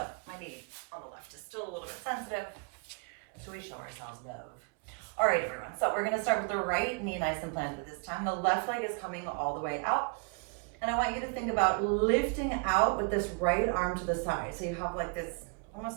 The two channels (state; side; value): quieter; left; 35.1 dB